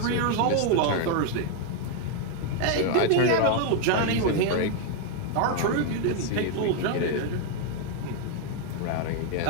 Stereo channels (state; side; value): different; both; correlation 0.01